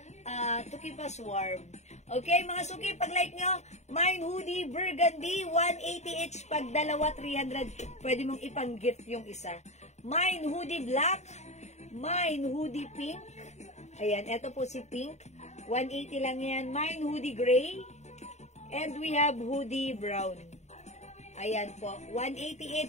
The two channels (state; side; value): late; right; 0.33 ms